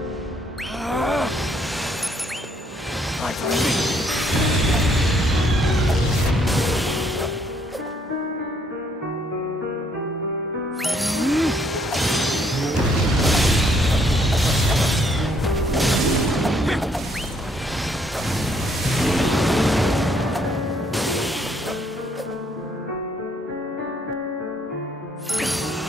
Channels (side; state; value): both; normal; correlation 0.67